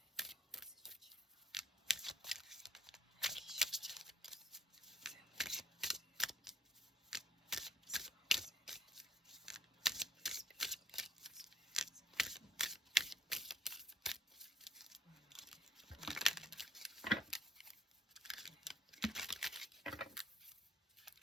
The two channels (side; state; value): both; normal; correlation 0.62